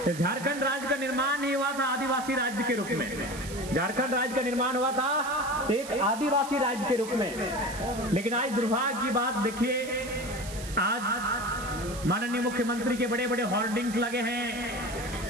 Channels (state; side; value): noise; right; hiss, 13 dB below the sound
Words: झारखंड राज्य का निर्माण ही हुआ था आदिवासी राज्य के रूप में। झारखंड राज्य का निर्माण हुआ था एक आदिवासी राज्य के रूप में। लेकिन आज दुर्भाग्य की बात देखिए, आज माननीय मुख्यमंत्री के बड़े बड़े होर्डिंग्स लगे हैं